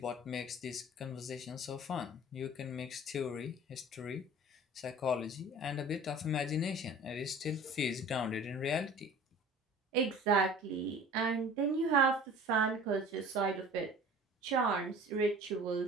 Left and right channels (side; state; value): both; normal; correlation 0.43